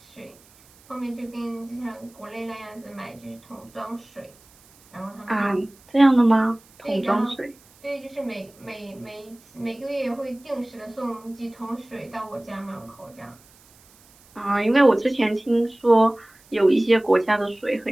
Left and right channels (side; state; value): right; noise; hiss, 28 dB below the sound